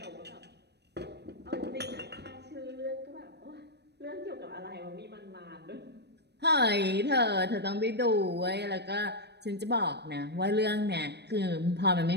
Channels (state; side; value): late; left; 0.49 ms